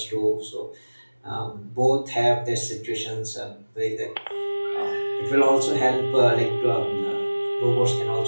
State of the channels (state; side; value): inverted; both; correlation -1.00